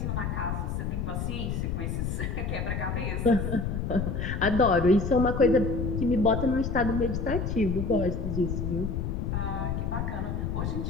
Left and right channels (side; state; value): left; noise; rumble, 2 dB below the sound